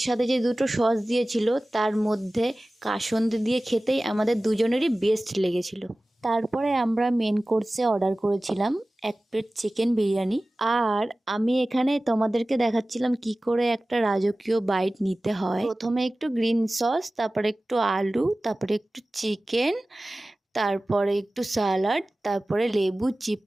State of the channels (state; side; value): normal; both; correlation 0.97